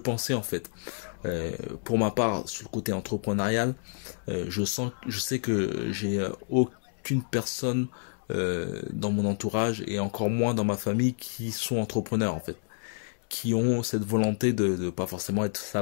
en fait. Pour ma part, sur le côté entrepreneurial, je sais que j'ai aucune personne dans mon entourage et encore moins dans ma famille qui sont entrepreneurs en fait, qui ont cette volonté de pas forcément être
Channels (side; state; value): right; silent; digital silence